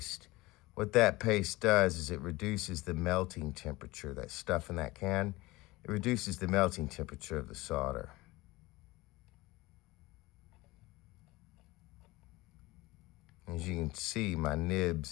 What that paste does is it reduces the melting temperature. That stuff in that can, it reduces the melting temperature of the solder. As you can see, my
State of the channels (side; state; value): right; quieter; 20.7 dB